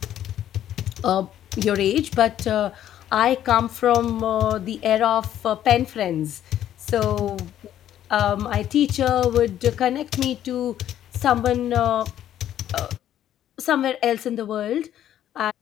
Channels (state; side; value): quieter; right; 11.3 dB